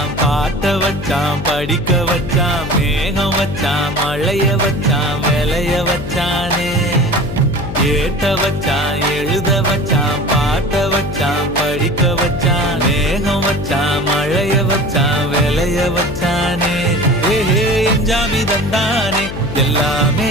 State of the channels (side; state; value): left; noise; hum, 8 dB below the sound